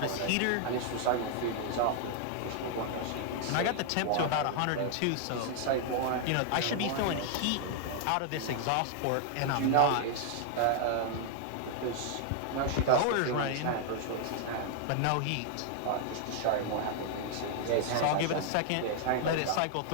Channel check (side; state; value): both; different; correlation 0.00